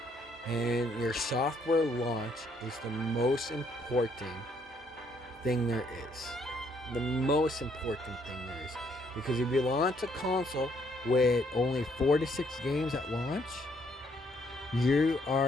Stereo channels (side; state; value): both; normal; correlation 0.69